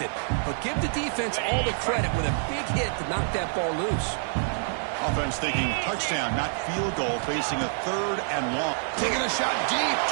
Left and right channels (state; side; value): silent; left; digital silence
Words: it. But give the defense all the credit with a big hit to knock that ball loose. Offense thinking touchdown, not field goal, facing a third and long. Taking a shot deep